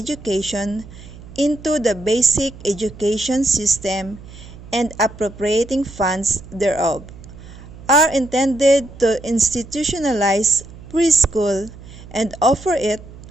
into the basic education system and appropriating funds thereof, are intended to institutionalize preschool and offer it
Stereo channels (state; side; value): noise; right; hum, 17 dB below the sound